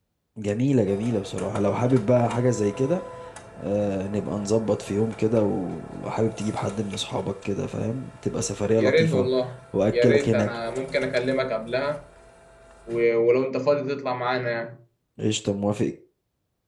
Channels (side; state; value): both; identical; correlation 1.00